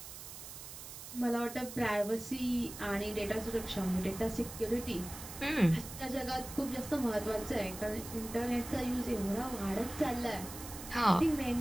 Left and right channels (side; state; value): right; noise; hiss, 12 dB below the sound